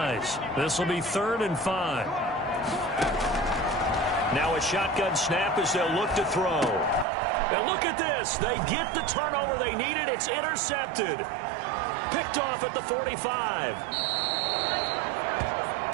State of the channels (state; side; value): drops out; left; at 7.1 s